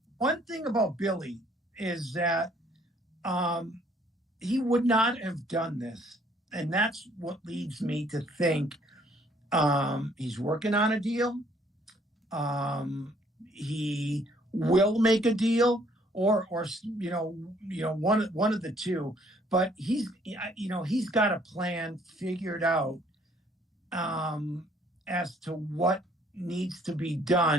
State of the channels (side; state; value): both; normal; correlation 0.63